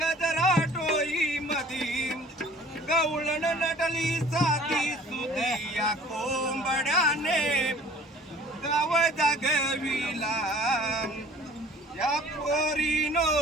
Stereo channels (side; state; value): both; normal; correlation 0.50